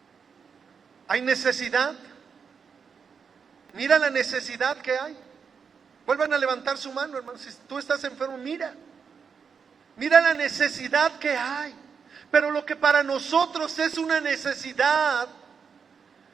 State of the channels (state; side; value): quieter; left; 6.2 dB